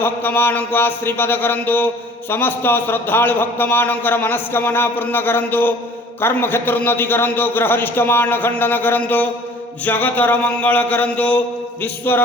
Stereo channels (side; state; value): both; normal; correlation 0.50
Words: मानक आशीर्वाद करंतु। समस्त श्रद्धालु भक्त मानकर मनस्कामना पूर्ण करंतु। कर्म क्षेत्र उन्नति करंतु। ग्रहरिष्ट मान खंडन करंतु। जगतर मंगल करंतु।